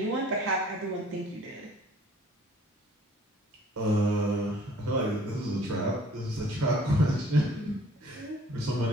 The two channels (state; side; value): normal; both; correlation 0.55